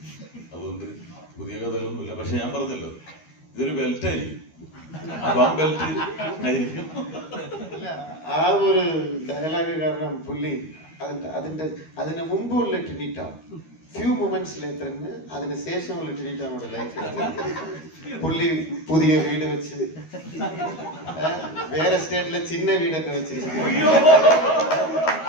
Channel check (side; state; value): right; late; 12 ms